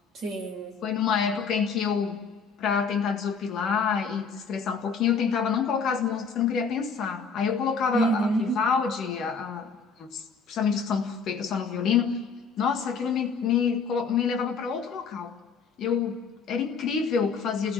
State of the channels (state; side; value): quieter; right; 5.4 dB